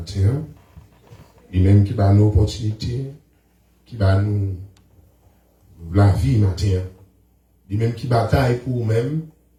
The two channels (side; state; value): both; identical; correlation 1.00